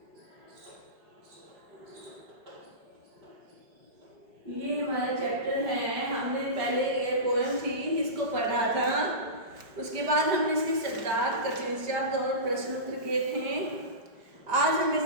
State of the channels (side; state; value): left; late; 5.1 ms